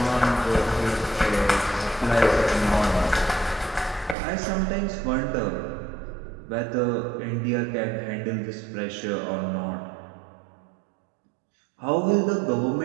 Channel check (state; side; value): drops out; left; at 4.2 s